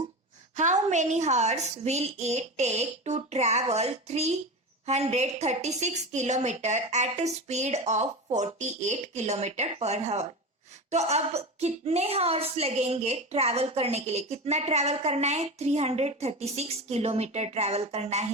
How many hours will it take to travel 336 kilometer at a speed of 48 kilometer per hour? तो अब कितने horse लगेंगे travel करने के लिए? कितना ट्रैवल करना है? 336 किलोमीटर ट्रैवल करना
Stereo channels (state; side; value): normal; both; correlation 0.25